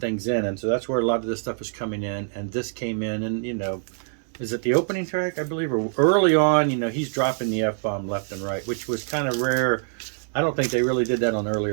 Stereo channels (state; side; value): silent; left; digital silence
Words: in, and so that's where a lot of this stuff is coming in, and this came in, and, is it the opening track, I believe, or early on, he's dropping the F-bomb left and right, which was kind of rare. I don't think they really did that on